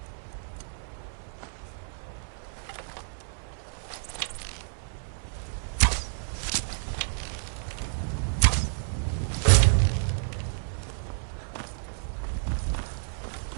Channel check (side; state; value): left; silent; 58 dB below the other